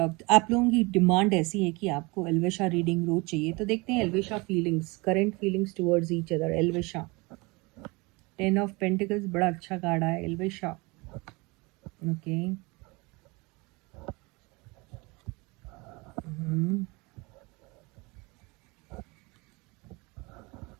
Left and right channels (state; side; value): quieter; left; 25.9 dB